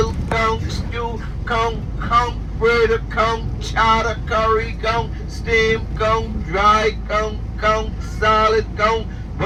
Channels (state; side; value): identical; both; correlation 1.00